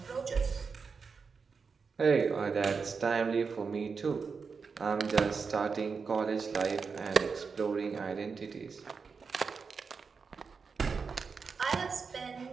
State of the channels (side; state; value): left; quieter; 5.3 dB